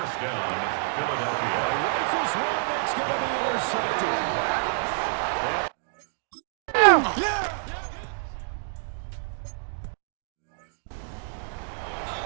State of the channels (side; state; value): left; silent; digital silence